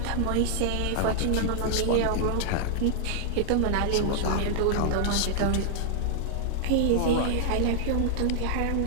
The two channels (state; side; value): different; both; correlation -0.01